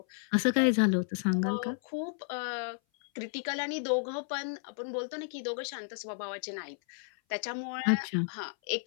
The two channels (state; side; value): silent; right; 56 dB below the other